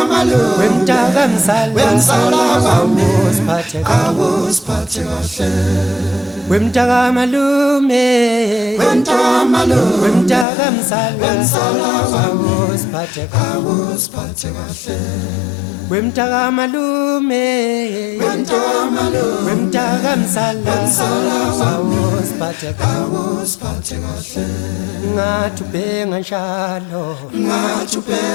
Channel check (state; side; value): drops out; right; at 10.5 s